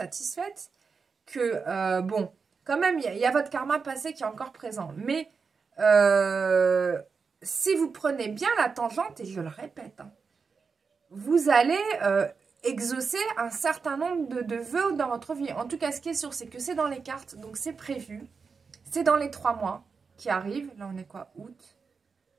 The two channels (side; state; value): left; quieter; 5.2 dB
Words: que, bon, quand même, il y a votre karma passé qui est encore présent. Mais... si vous prenez bien la tangente, et je le répète, hein, vous allez exaucer un certain nombre de vœux dans votre vie. En tout cas, ce qui est sûr, c'est que c'est dans les cartes, donc c'est prévu. C'est dans les 3 mois qui arrivent. Là, on est quoi? Août,